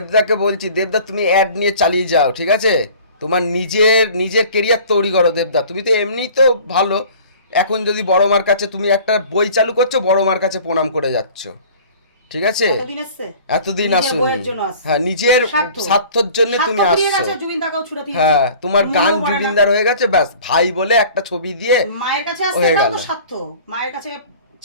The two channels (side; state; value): both; inverted; correlation -0.46